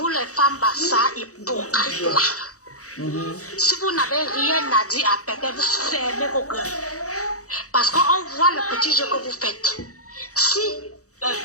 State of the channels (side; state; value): right; late; 0.65 ms